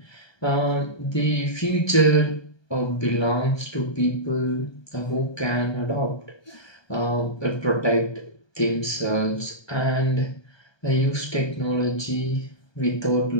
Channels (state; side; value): late; right; 1.2 ms